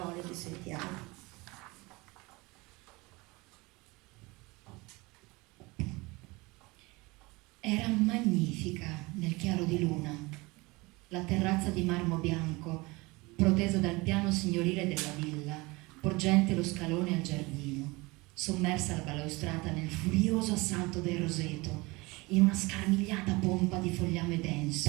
che sentiamo. Era magnifica nel chiaro di luna, la terrazza di marmo bianco, protesa dal piano signorile della villa, porgente lo scalone al giardino, sommersa la balaustrata nel furioso assalto del roseto, in una scarmigliata pompa di fogliame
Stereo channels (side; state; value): left; quieter; 23.8 dB